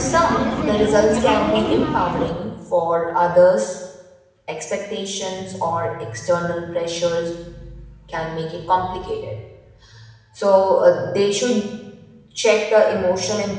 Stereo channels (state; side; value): identical; both; correlation 1.00